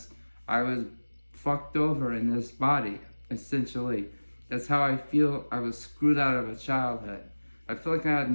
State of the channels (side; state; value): both; inverted; correlation -1.00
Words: I was fucked over in this body, essentially. That's how I feel. I was screwed out of a childhood. I feel like I had